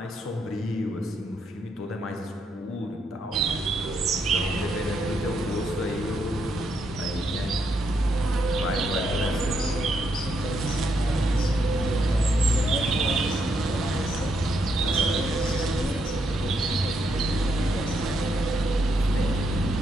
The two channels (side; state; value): both; normal; correlation 0.78